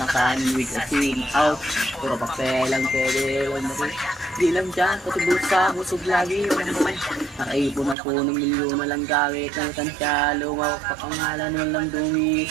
kanin with a team out. Puro papel lang pwede lang na rin. Di lang dyan, pati bulsa, busog lagi yun ang buhay. Nakaipon ako ng milyon na lang gamit ng tansya. Lumawak pa pangalan, walang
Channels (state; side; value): drops out; left; at 8.0 s